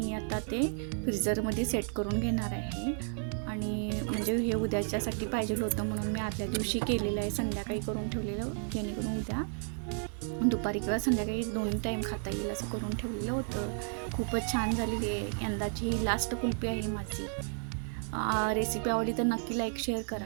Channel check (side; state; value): left; silent; 56 dB below the other